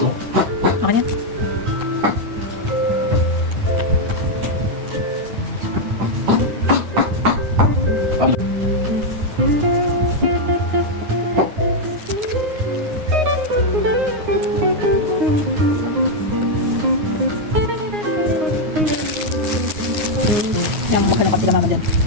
Okay niya? Sila mama dyan.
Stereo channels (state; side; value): late; left; 9.6 ms